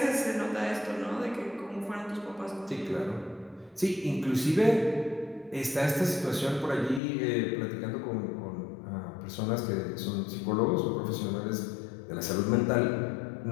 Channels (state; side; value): drops out; right; at 7.0 s